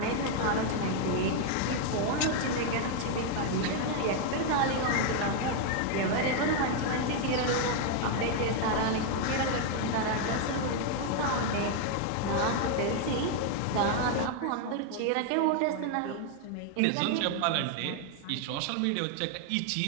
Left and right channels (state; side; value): different; both; correlation 0.00